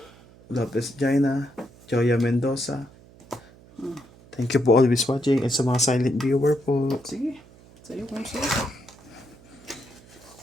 Lopez Jaina, Joya Mendoza. Thank you po always watching and sa mga silent viewer po. Sige. Sa'yo kung sa'yo.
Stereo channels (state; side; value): noise; right; hum, 24 dB below the sound